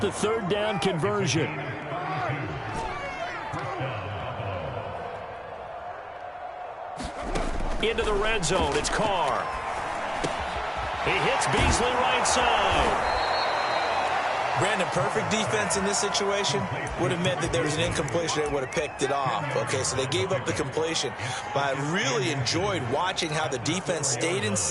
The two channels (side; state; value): both; identical; correlation 1.00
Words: the 3rd down conversion. Into the red zone. It's Carr. He hits Beasley right side. Brandon, perfect defense in this situation would have meant that there was an incompletion. They would have picked it off. Okay, so they gave up the completion. But I really enjoyed watching how the defense stayed in